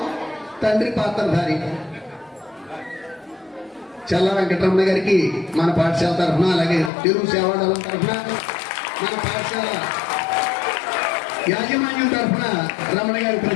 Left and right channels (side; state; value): right; drops out; at 6.9 s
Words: తండ్రి పాత్రధారి చల్ల వెంకటరమణ గారికి మన పాఠశాల తరఫున, అలాగే తెలుగు సేవాదళం తరఫున, మన పాఠశాల యాజమాన్యం తరఫున రమణ గారికి